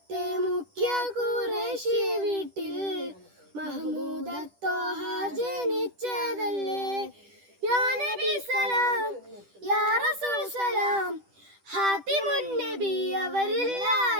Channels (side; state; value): left; late; 10 ms